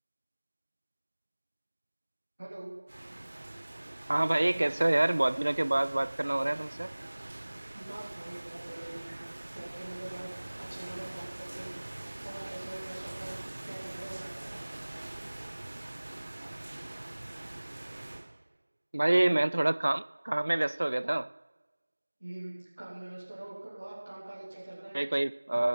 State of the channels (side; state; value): both; inverted; correlation -1.00